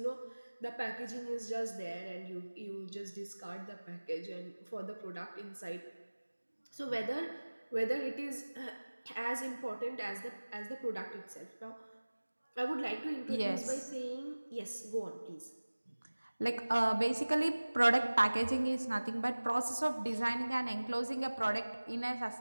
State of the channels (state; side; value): inverted; both; correlation -1.00